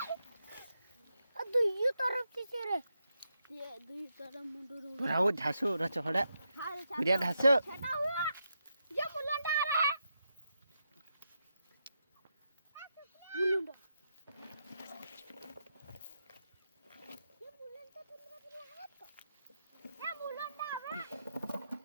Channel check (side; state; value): both; inverted; correlation -0.84